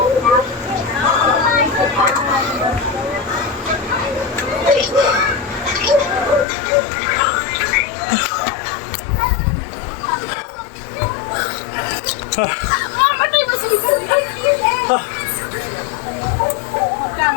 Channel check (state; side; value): drops out; right; at 6.5 s